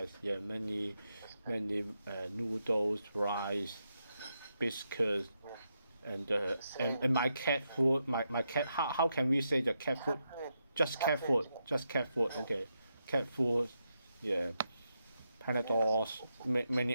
Yeah, many noodles, rice, biscuits, and my cat food. My cat. How can we say the cat food? Just cat food. Just cat food. Okay, cat food. Yeah, Panadols.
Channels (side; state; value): both; inverted; correlation -0.84